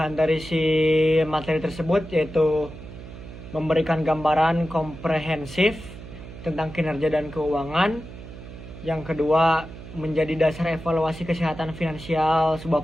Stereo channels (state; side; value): noise; right; hum, 14 dB below the sound